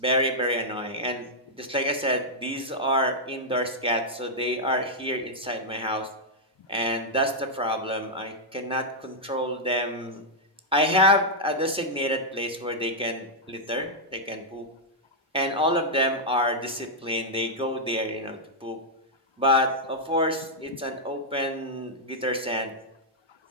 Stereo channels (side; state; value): both; normal; correlation -0.06